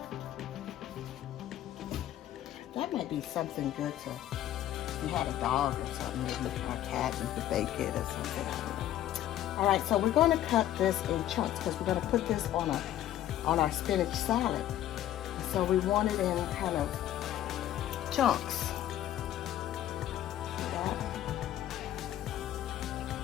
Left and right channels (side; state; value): right; quieter; 12.5 dB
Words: That might be something good to, if you had a dog or something, maybe or a cat, you could bake it or something. I don't know. All right, so we're going to cut this in chunks because we're going to put this on our spinach salad. So we want it in kind of chunks. See that?